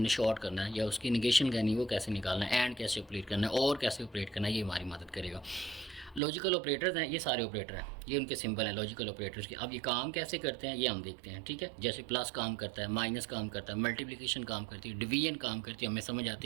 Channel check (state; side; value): drops out; left; at 6.2 s